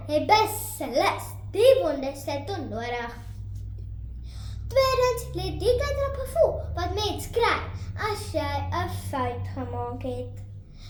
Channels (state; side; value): identical; both; correlation 1.00